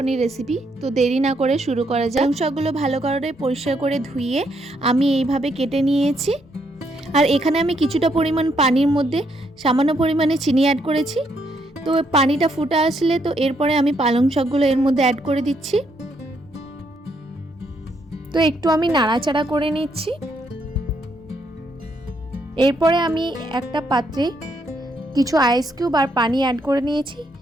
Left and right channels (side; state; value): both; normal; correlation 0.74